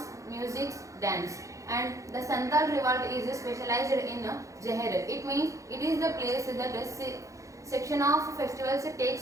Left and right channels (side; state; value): left; late; 0.15 ms